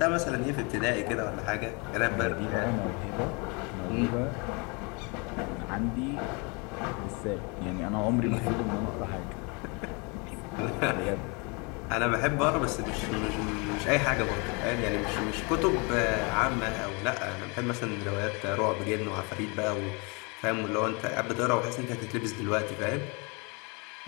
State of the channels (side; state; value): right; quieter; 30.8 dB